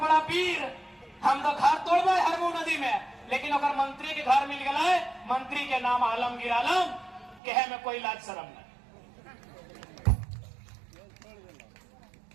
वीर, हम तो घर तोड़बे हरमू नदी में, लेकिन ओकर मंत्री के घर मिल गए, मंत्री के नाम आलमगीर आलम, कहे में कोई लाज शर्म नहीं।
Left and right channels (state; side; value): drops out; left; at 7.4 s